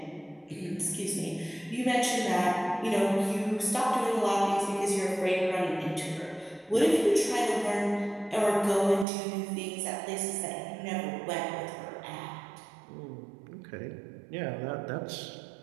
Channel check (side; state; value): left; drops out; at 9.1 s